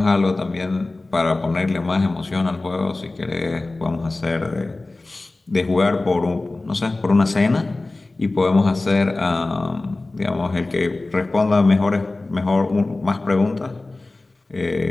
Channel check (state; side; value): quieter; right; 3.1 dB